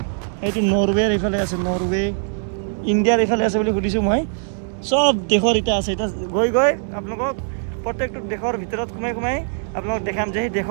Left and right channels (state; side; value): silent; left; 65 dB below the other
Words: এইটো নৰৱেৰ এইফালে আছে, নৰৱে ইণ্ডিয়াৰ এইফালে আছে বুলি সুধিছোঁ মই। চব দেশৰ এতিয়া আছে। এতিয়া গৈ আপোনালোকক প্ৰত্যেকটো দেশৰ ভিতৰত সোমাই আপোনালোকক দেখাম যে সেই